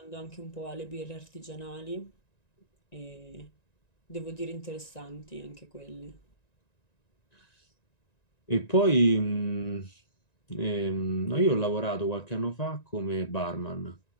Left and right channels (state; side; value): late; right; 1.9 ms